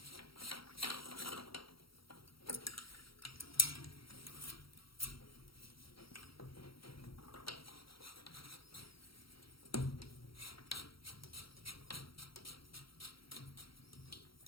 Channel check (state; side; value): late; right; 0.75 ms